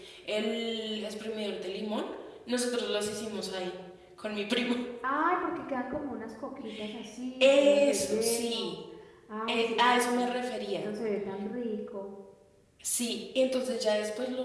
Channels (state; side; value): identical; both; correlation 1.00